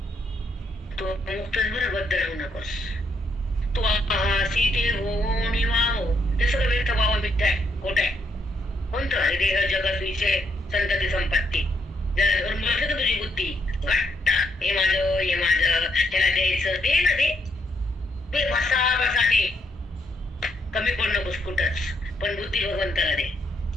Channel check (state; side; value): normal; both; correlation 0.76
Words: तो मुक्तच बरं, बद्ध राहू नकोस. तू आहासी ते हो निवाहो, ते सगळं व्यर्थ व्हावं, मिथ्या आहे, खोट आहे. कोणतं आहे? देह जगत विषय संतती संपत्ती. जरा धरून बसलं तर तुझी बुद्धी घट्ट, हे माझं त्याला द्यायचं, दे ना, ते बसा दे. कमी पड नकोस कुठंच, पण बुद्धी भगवंताला दे.